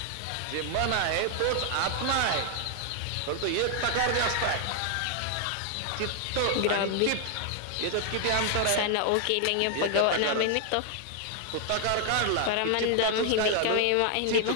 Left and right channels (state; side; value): different; both; correlation 0.00